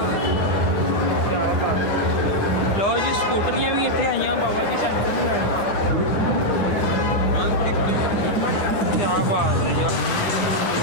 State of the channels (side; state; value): right; late; 10 ms